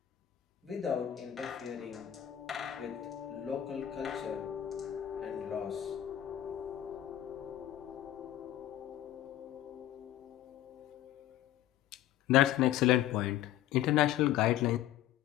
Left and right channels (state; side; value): quieter; right; 12.4 dB